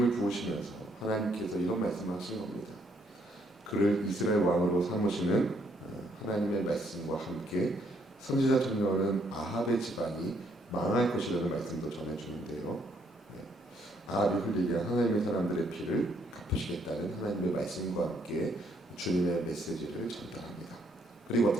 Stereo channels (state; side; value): normal; both; correlation 0.70